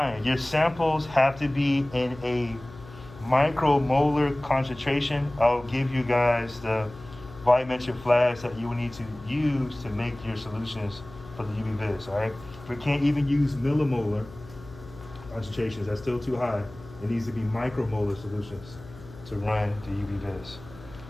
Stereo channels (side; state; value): left; noise; hum, 18 dB below the sound